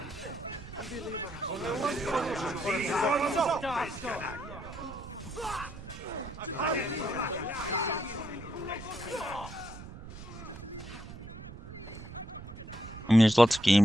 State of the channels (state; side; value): noise; right; rumble, 13 dB below the sound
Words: mean, there's lots of